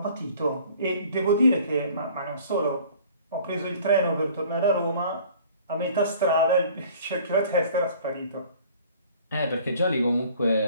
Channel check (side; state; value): both; inverted; correlation -0.50